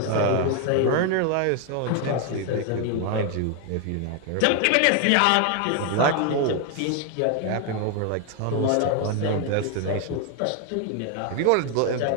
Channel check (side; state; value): both; different; correlation 0.01